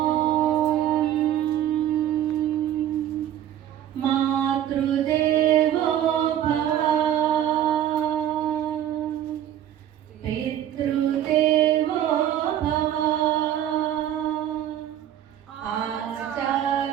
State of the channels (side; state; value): left; quieter; 11.3 dB